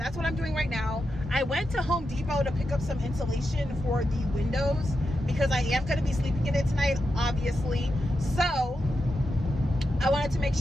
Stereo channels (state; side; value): normal; both; correlation 0.87